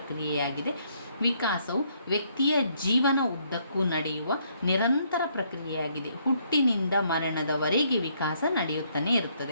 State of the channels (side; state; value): both; inverted; correlation -0.70